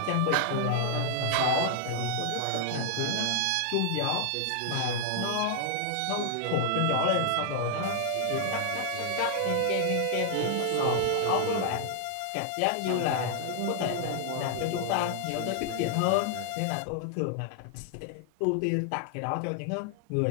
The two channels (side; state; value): both; different; correlation 0.00